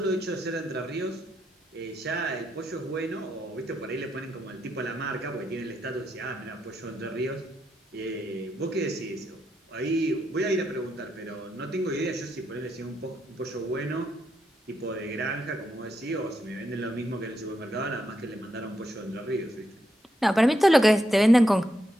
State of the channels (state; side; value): normal; both; correlation 0.81